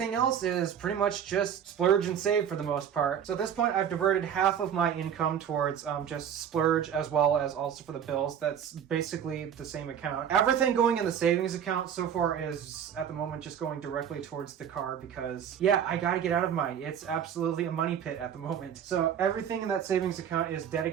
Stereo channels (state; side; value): quieter; left; 8.7 dB